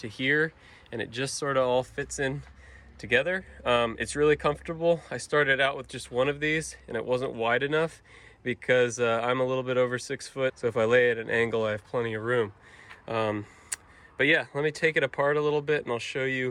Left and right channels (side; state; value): both; identical; correlation 1.00